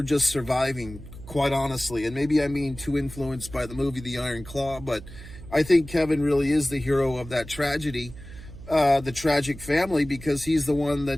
just surviving, quite honestly. And maybe I'm being too influenced by the movie The Iron Claw, but I think Kevin really is the hero of that tragedy, the tragic family, because he's the one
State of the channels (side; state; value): right; noise; hum, 15 dB below the sound